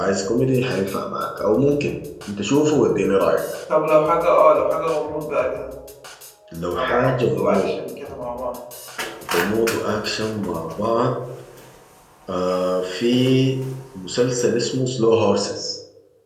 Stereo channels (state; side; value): identical; both; correlation 1.00